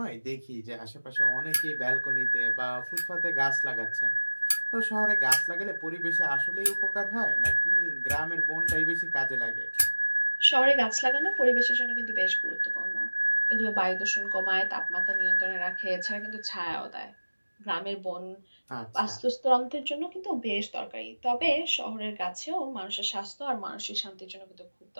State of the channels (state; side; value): inverted; both; correlation -1.00